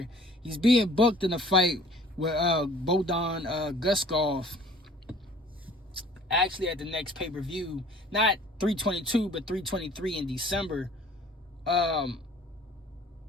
He's being booked in a fight with Bodan Guskov. Actually, at the next pay-per-view, not 322, but 323 in December.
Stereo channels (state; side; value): normal; both; correlation 0.51